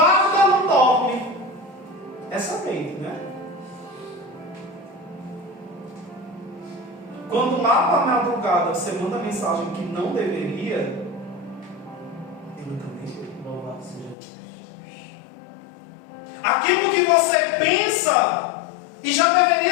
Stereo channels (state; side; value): drops out; right; at 14.2 s